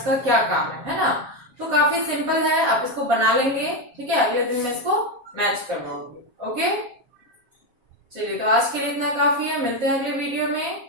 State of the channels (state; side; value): late; left; 7.2 ms